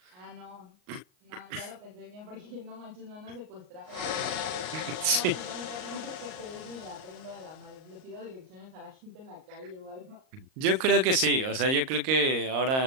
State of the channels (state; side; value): late; left; 38 ms